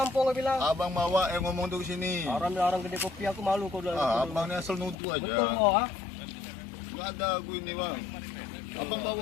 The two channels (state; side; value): drops out; right; at 5.0 s